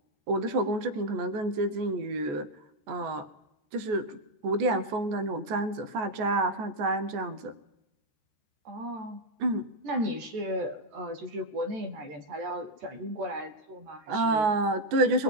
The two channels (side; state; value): left; late; 14 ms